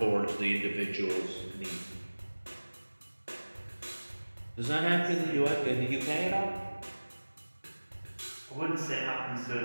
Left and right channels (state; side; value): inverted; both; correlation -1.00